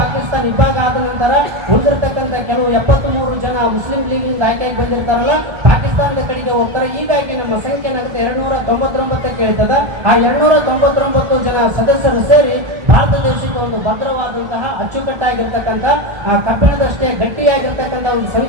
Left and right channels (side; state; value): left; late; 1.3 ms